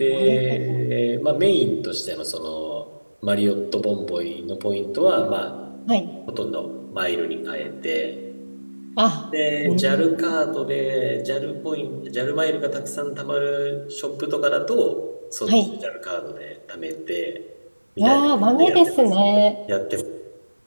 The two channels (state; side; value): inverted; both; correlation -1.00